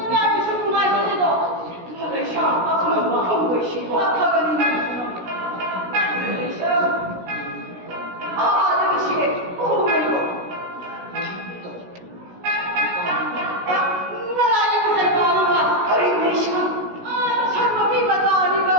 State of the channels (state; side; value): late; left; 16 ms